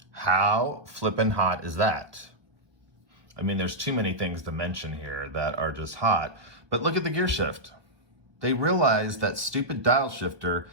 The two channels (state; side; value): late; left; 1.2 ms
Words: How flippin' hot is that? I mean, there's too many things to mention here that are just hot, but look at the gear shift. They realize that stupid dial shifter